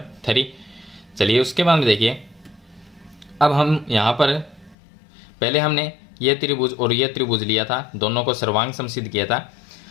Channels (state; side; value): drops out; right; at 4.8 s